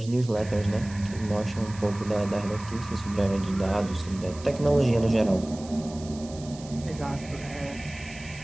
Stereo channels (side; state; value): right; noise; hiss, 18 dB below the sound